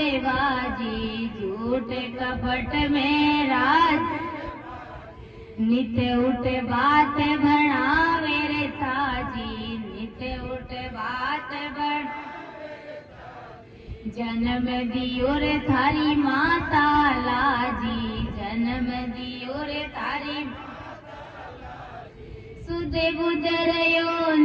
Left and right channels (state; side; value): identical; both; correlation 1.00